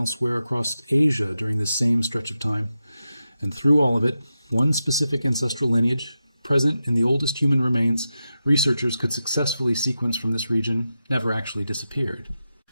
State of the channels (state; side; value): inverted; both; correlation -0.90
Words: across Asia during this same stretch of time. And through all of it, one specific ancestral lineage, present in the oldest human remains researchers could successfully sequence from this region, never actually disappeared.